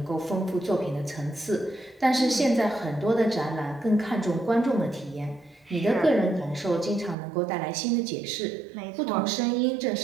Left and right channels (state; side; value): drops out; left; at 7.2 s